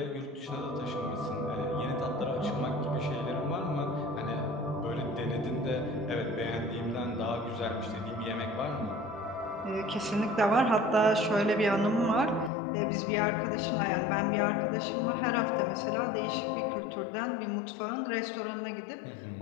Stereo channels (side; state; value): right; drops out; at 12.5 s